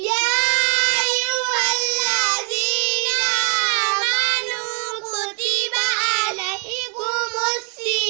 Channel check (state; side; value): quieter; left; 39.2 dB